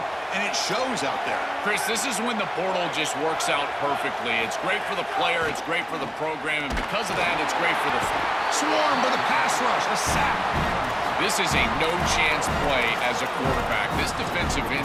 and it shows out there. Chris, this is when the portal just works out perfectly. It's great for the player, it's great for the program, and because of that, it's great for the swarm with a pass rush, a sack. This is a no-chance play as a quarterback. This defensive end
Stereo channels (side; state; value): both; identical; correlation 1.00